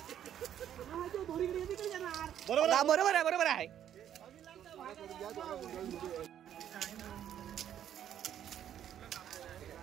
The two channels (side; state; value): left; quieter; 10.3 dB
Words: बरोबर आहे, बरोबर आहे.